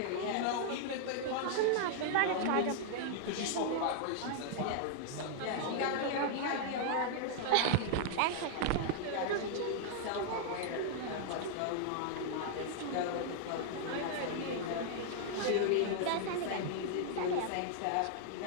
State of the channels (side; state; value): both; different; correlation -0.01